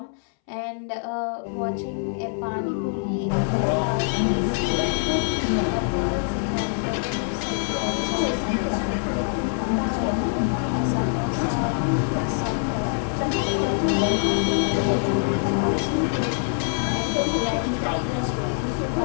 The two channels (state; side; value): silent; right; 62 dB below the other